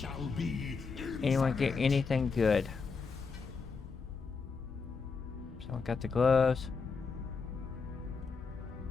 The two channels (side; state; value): right; quieter; 5.0 dB